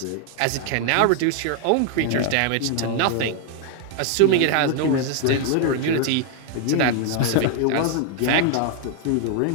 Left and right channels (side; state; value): both; different; correlation 0.00